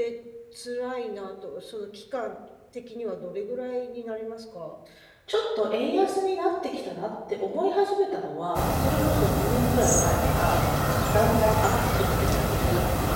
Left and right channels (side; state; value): both; identical; correlation 1.00